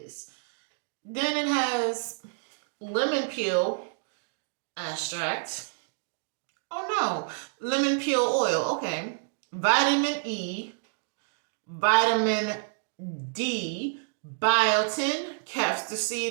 Then it has lemon peel extract. Oh no, lemon peel oil. Okay, vitamin E, vitamin D, biotin, castor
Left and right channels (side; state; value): left; silent; digital silence